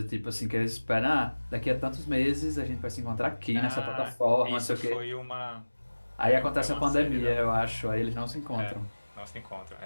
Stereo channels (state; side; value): inverted; both; correlation -1.00